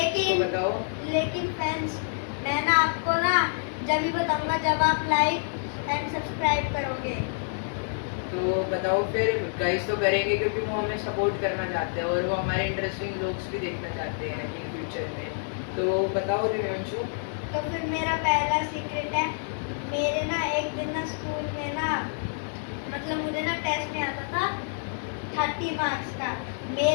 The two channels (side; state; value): right; silent; digital silence